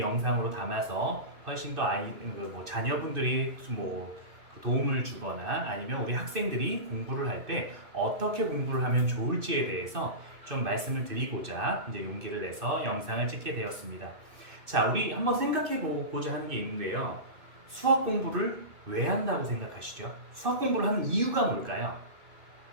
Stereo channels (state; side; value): late; left; 2.6 ms